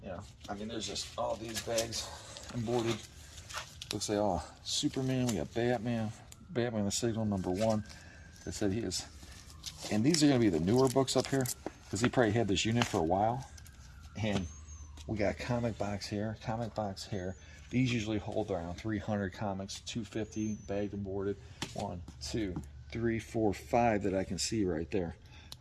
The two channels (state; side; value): identical; both; correlation 1.00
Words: I mean, there's just all these bags and boarded. Looks like all Superman. We got Batman the Signal #1. That said he is. And these are going to be the newer books up here because he probably had this unit for a while. And we got comic box here, These usually hold around 300 comics, 250 bagged and boarded. 1, 2, 3, 4, 5 that I can see right there.